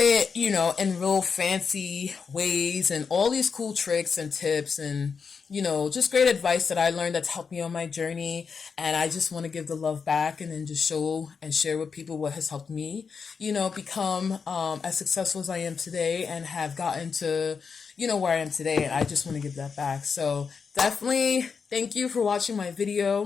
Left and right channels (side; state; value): right; quieter; 5.7 dB